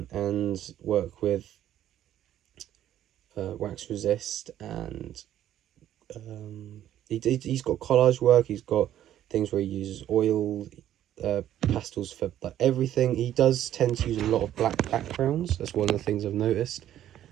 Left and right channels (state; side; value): quieter; left; 11.7 dB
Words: and work with wax resist, and he's got collage work. He's got things where he uses oil, pastels for like everything. He does tend to use a lot of black backgrounds. That's one of the things I've noticed.